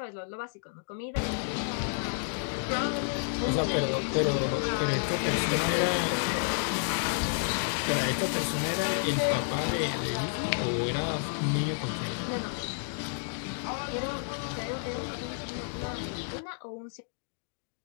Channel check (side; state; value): right; silent; digital silence